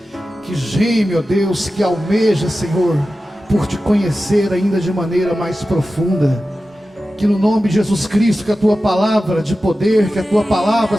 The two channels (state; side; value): normal; both; correlation 0.94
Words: que geme, ó Deus, que almeja, Senhor, por te conhecer ainda de maneira mais profunda. Que no nome de Jesus Cristo, que a tua palavra de poder, que a tua palavra,